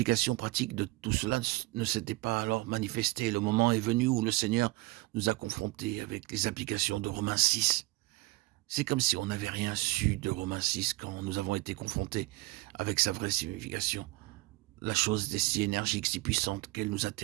pratique de tout cela ne s'était pas alors manifestée. Le moment est venu où le Seigneur nous a confrontés avec les applications de Romains 6. C'est comme si on n'avait rien su de Romains 6 quand nous avons été confrontés avec sa vraie signification. La chose est si énergique, si puissante qu'elle nous a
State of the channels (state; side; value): quieter; left; 21.6 dB